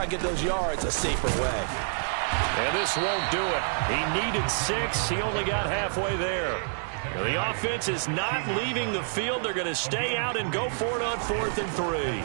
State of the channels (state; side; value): silent; left; digital silence